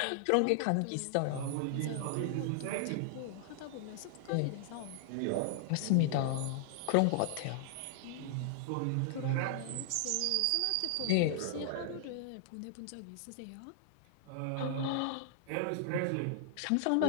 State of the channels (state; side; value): different; both; correlation -0.01